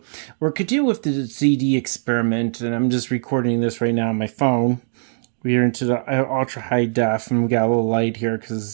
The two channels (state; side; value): silent; left; digital silence